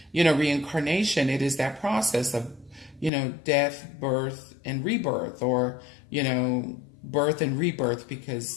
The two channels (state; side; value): drops out; right; at 3.1 s